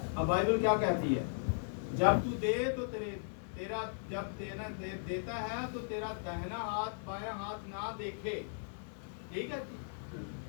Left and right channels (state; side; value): silent; right; 53 dB below the other